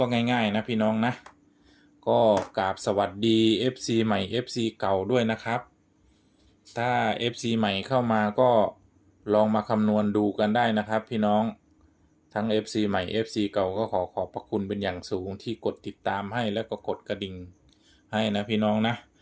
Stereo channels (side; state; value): both; identical; correlation 1.00